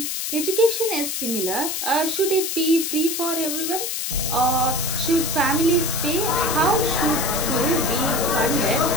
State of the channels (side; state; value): left; noise; hiss, 2 dB below the sound